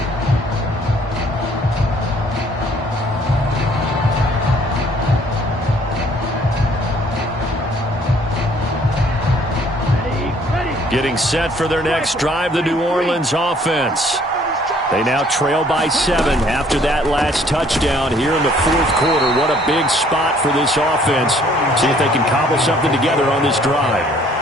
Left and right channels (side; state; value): both; normal; correlation 0.60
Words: Getting set for their next drive, the New Orleans offense. They now trail by 7 after that last touchdown here in the 4th quarter. What a big spot for this offense. See if they can cobble something together on this drive.